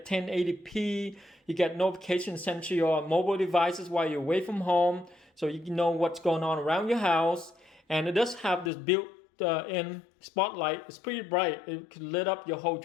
1080p, you get notifications sent to your mobile devices while you're away from home, so you can know what's going on around your house. And it does have this built-in spotlight. It's pretty bright. It can lit up your whole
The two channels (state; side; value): drops out; right; at 8.7 s